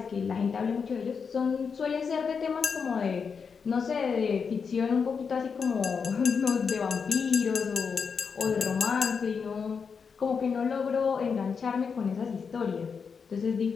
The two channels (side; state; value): right; quieter; 5.9 dB